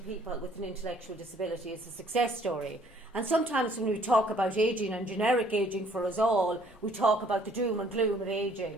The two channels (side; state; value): both; normal; correlation 0.61